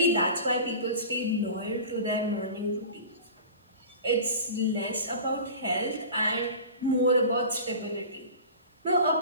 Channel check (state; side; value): inverted; both; correlation -0.37